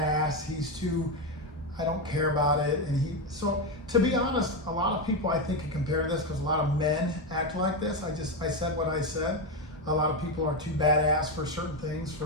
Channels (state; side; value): normal; both; correlation 0.10